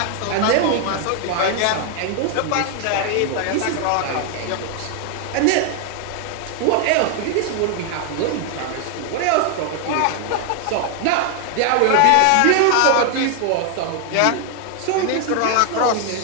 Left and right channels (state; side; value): different; both; correlation 0.00